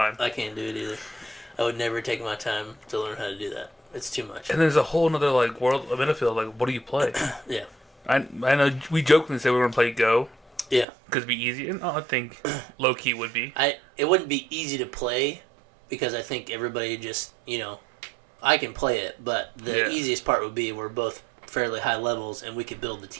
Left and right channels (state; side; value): drops out; left; at 10.9 s